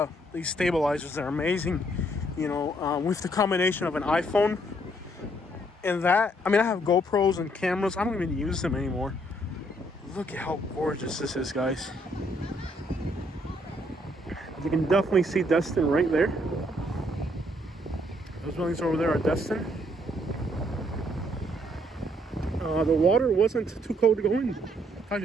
these stabilizers. They're amazing, with the combination of an iPhone and that. I mean, I have GoPros and cameras. I don't even use them anymore. Look at how gorgeous this is, guys. You can definitely see Destin right there. Those buildings over there are Destin. The water wasn't too cold to go in.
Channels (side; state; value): both; normal; correlation 0.69